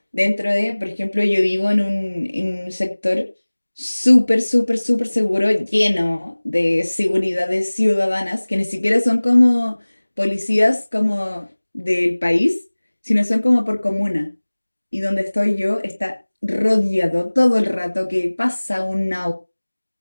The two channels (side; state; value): both; inverted; correlation -1.00